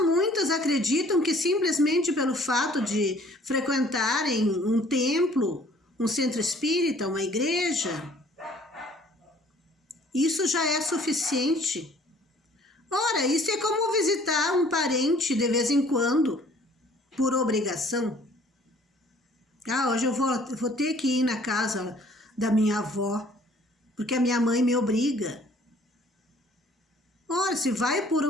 Muitas acreditam que simplesmente pelo fato de frequentarem um templo, um centro espírita, uma igreja, isso já é suficiente. Ora, isso é como visitar um parente de vez em quando, por obrigação. Hoje eu vou ter que ir na casa da minha avó, porque a minha mãe me obriga. Ora, se vai por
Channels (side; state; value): both; normal; correlation 0.56